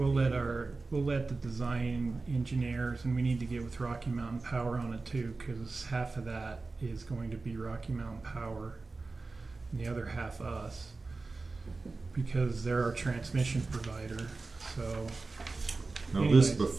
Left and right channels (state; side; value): quieter; left; 3.7 dB